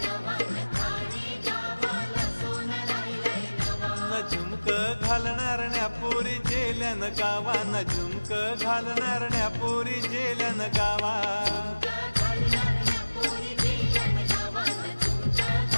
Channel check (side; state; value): both; inverted; correlation -1.00